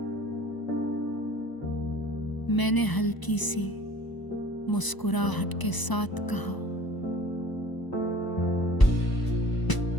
मैंने हल्की सी मुस्कुराहट के साथ कहा,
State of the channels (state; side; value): late; right; 1.0 ms